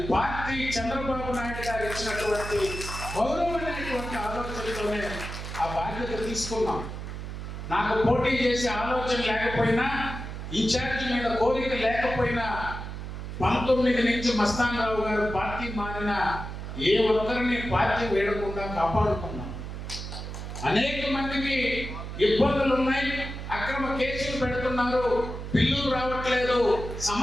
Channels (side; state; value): right; noise; hum, 8 dB below the sound